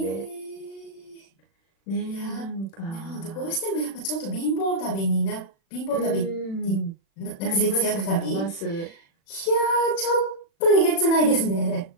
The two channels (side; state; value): right; late; 36 ms